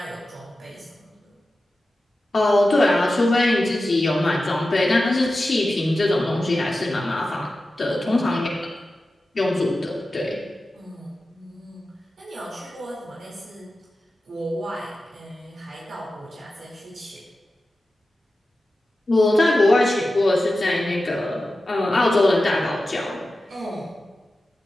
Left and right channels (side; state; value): both; normal; correlation 0.93